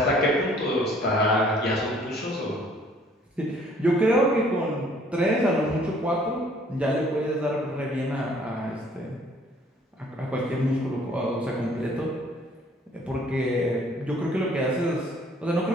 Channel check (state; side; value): normal; both; correlation 0.59